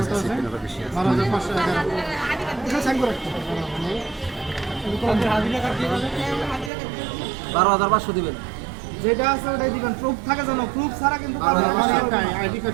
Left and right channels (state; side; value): drops out; left; at 6.7 s